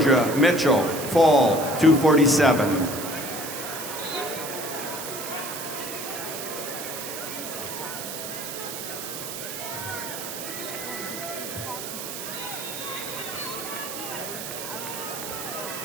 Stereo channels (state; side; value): noise; right; hiss, 7 dB below the sound